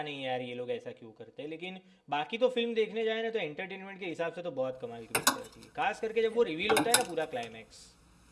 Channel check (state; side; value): identical; both; correlation 1.00